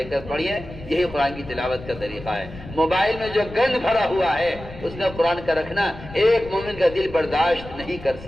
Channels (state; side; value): noise; left; rumble, 15 dB below the sound